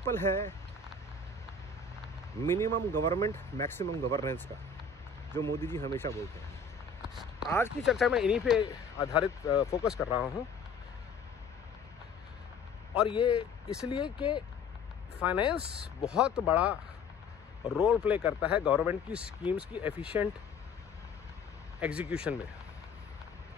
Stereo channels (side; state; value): right; quieter; 4.7 dB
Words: है मिनिमम गवर्नमेंट मैक्सिमम गवर्नेंस का, जो मोदी जी हमेशा बोलते हैं। आज की चर्चा में इन्हीं पे आधारित फोकस कर रहा हूं, और ये इसलिए कि फाइनेंस बहुत बड़ा रोल प्ले करता है गवर्नमेंट की स्कीम्स की एफिशिएंट एग्जीक्यूशन में।